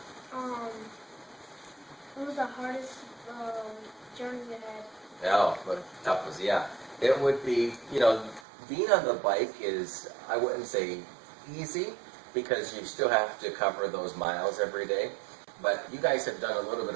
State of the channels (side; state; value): left; drops out; at 8.4 s